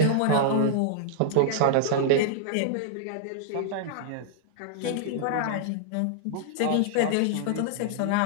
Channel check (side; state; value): both; different; correlation -0.02